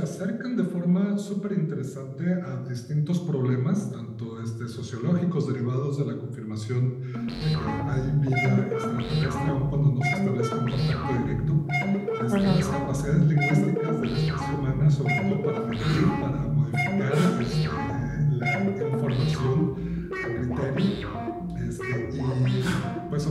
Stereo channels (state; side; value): identical; both; correlation 1.00